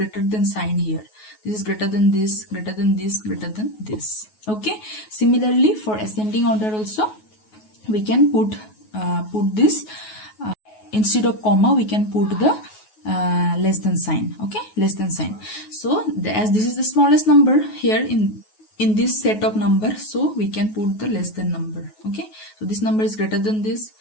than sign here. This is greater than this, greater than this, greater than this. Okay, similarly for ascending order also we can put this instead of comma we can put the less than sign. Okay, less than sign. So as this is the smallest number here in this set of numbers, so we can put the less than number. Okay, so this number is greater than this,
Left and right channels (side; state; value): right; late; 9.4 ms